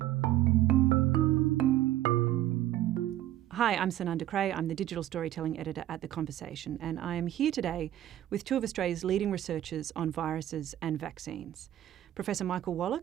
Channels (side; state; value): left; quieter; 13.1 dB